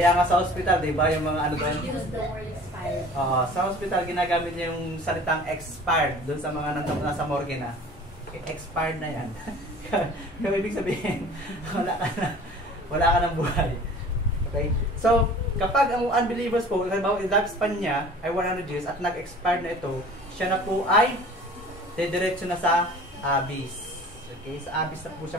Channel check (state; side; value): normal; both; correlation 0.45